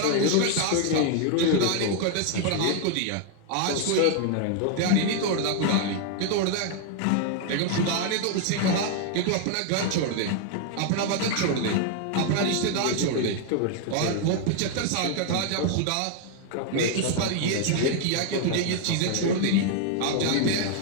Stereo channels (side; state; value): both; different; correlation 0.00